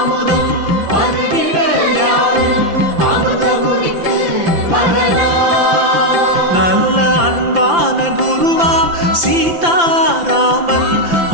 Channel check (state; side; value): late; left; 5.9 ms